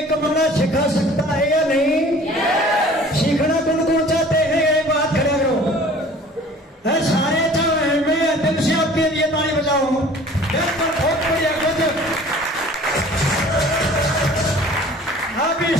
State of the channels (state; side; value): normal; both; correlation 0.48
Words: कमाना सिखा सकता है या नहीं? सीखना कौन कौन चाहते हैं? एक बात खड़े करो, सारे चाहे, मैं दिल से आपके लिए ताली बजाऊं, बहुत बढ़िया। अब